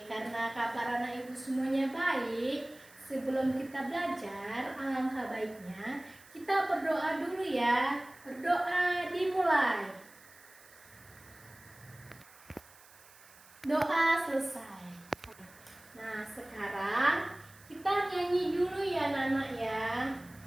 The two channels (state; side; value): noise; right; hiss, 24 dB below the sound